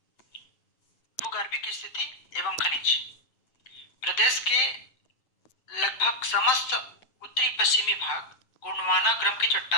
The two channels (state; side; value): late; right; 7.8 ms